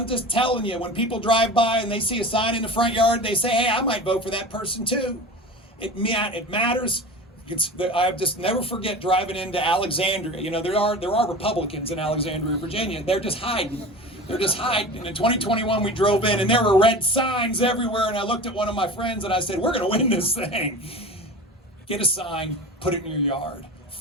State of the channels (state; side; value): normal; both; correlation 0.34